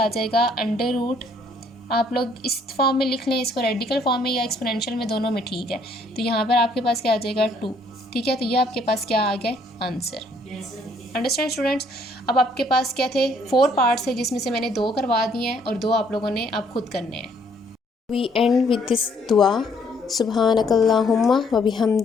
आ जाएगा, √। आप लोग इस फॉर्म में लिख लें, इसको रेडिकल फॉर्म में या एक्सपोनेंशियल में, दोनों में ठीक है। तो यहाँ पर आपके पास क्या आ जाएगा, 2, ठीक है। तो ये आपके पास क्या आ गया, आंसर। Understand students. अब आपके पास क्या थे, 4 पार्ट्स है, जिसमें से मैंने 2 करवा दिए हैं और 2 आप लोगों ने अब खुद करने हैं। We end with this dua. Subhanakallahumma wa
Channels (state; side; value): normal; both; correlation 0.65